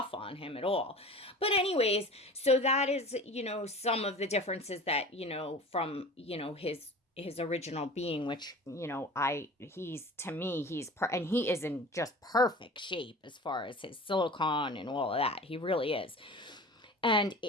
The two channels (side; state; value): both; normal; correlation 0.38